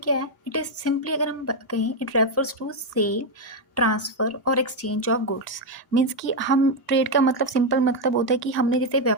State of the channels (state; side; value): normal; both; correlation 0.03